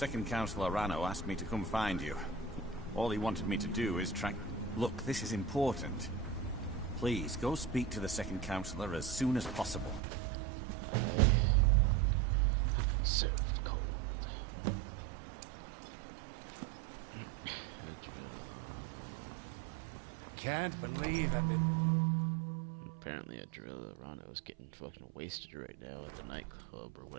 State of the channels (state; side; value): drops out; left; at 10.0 s